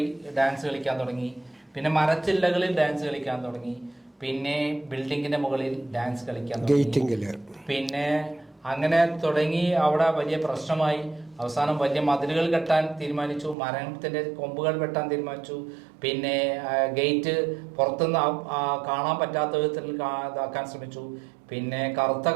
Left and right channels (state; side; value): drops out; left; at 13.6 s